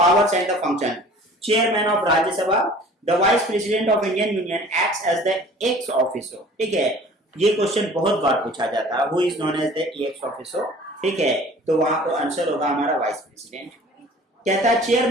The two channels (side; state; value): both; normal; correlation 0.47